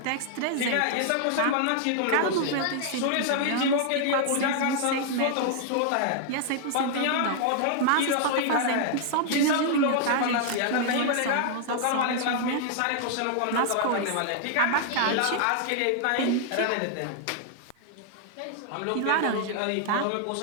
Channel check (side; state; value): both; different; correlation 0.00